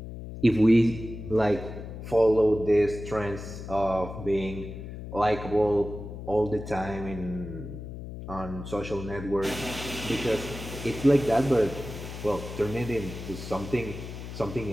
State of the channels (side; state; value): left; noise; hum, 10 dB below the sound